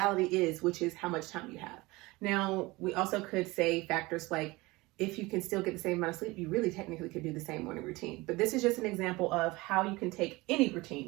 is, which is how much time you have. Now, we also could say factors like if you can still get the same amount of sleep, you really technically could do the same morning routine. But this is just an example of how you can take any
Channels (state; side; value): quieter; left; 21.9 dB